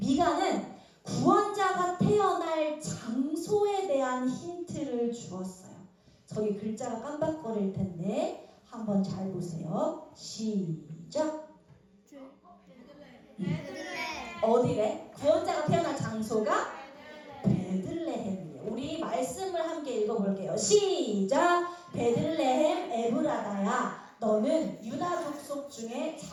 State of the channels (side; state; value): both; identical; correlation 1.00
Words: 구원자가 태어날 장소에 대한 힌트를 주었어요. 저기 글자가 깜빡거릴 텐데 한번 잘 보세요. 시작. 어디래? 구원자가 태어날 장소가 베들레헴이에요. 우리 말씀을 함께 읽어볼게요. 시작. 베들레헴 에브라다야, 너는 유다 족속 중에